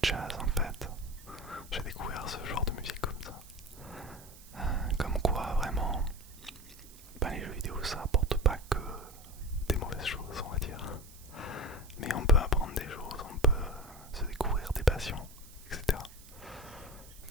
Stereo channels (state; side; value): noise; right; hiss, 20 dB below the sound